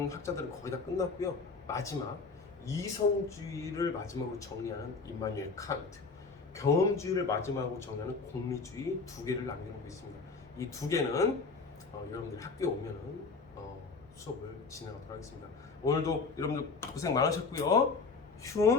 학자들은 거의 다 끝났고요. 마지막 이성주의를 마지막으로 정리하는 임마누엘 칸트, 경험주의를 마지막으로 정리하는 공리주의 두 개를 남겨놓고 있습니다. 이 두 개는 여러분들 학교에 오면은 수업을 진행하도록 하겠습니다. 오늘도 여러분들 고생 많으셨고요.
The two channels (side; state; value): right; quieter; 4.4 dB